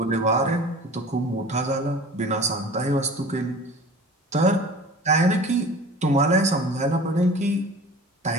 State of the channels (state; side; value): normal; both; correlation 0.40